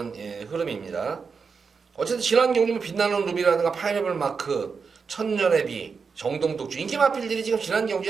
흐름입니다. 어쨌든 지난 경주는 빛나는 루비라든가 파이널 마크, 천년의 비, 정동독주 인기 마필들이 지금 지난 경주에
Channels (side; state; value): left; quieter; 5.4 dB